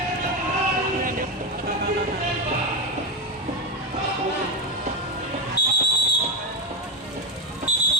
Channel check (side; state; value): both; normal; correlation 0.13